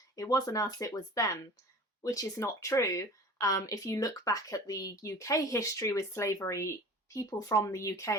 it wasn't us, it was them, which is not true. If you look back at the UK history with slavery, people from the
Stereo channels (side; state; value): both; normal; correlation 0.40